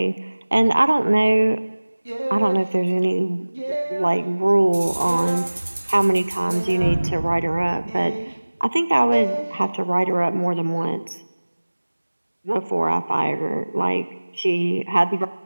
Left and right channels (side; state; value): both; inverted; correlation -1.00